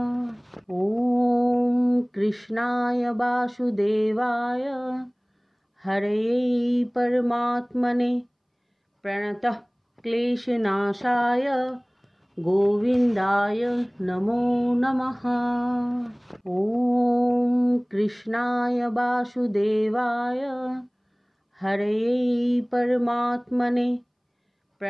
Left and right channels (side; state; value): both; identical; correlation 1.00